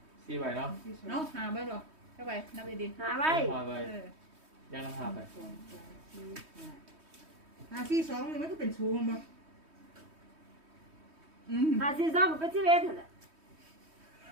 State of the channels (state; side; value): late; left; 3.2 ms